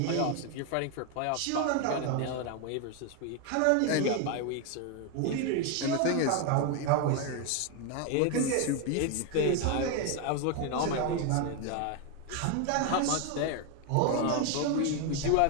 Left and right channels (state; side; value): different; both; correlation 0.01